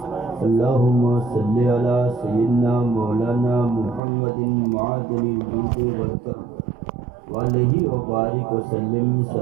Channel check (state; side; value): drops out; left; at 4.0 s